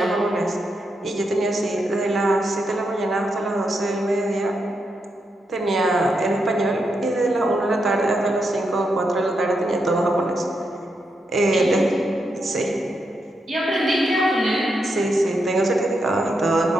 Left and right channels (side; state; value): both; normal; correlation 0.83